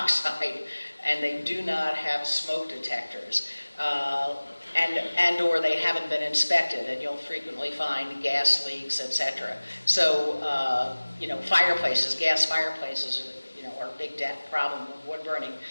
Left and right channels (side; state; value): both; inverted; correlation -1.00